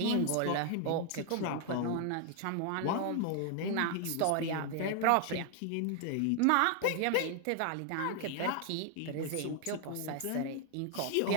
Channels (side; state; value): both; different; correlation 0.00